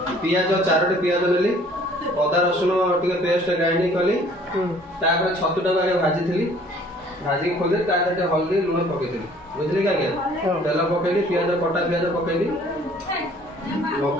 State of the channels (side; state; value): both; normal; correlation 0.55